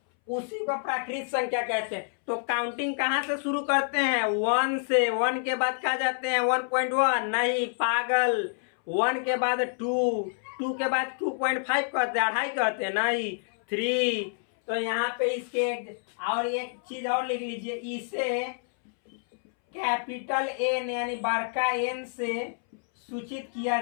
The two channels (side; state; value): right; silent; 59 dB below the other